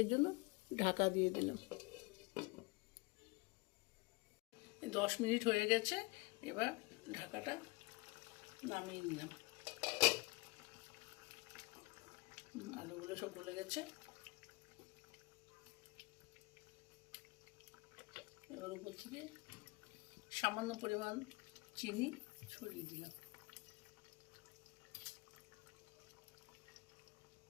জন্য ঢাকা দিয়ে দিলাম। 10 মিনিট হয়ে গেছে, এবার ঢাকাটা নামিয়ে নিলাম। আলুগুলো সব গলে গেছে। এবার উপর থেকে সামান্য পরিমাণ চিনি ছড়িয়ে দিলাম।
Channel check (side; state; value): right; quieter; 26.2 dB